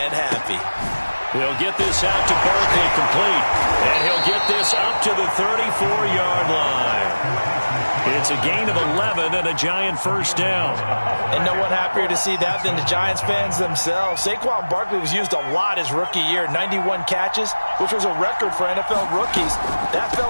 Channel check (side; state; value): both; inverted; correlation -1.00